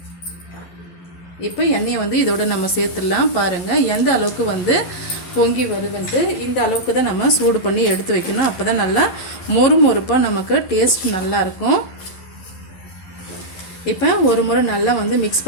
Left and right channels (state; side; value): late; right; 11 ms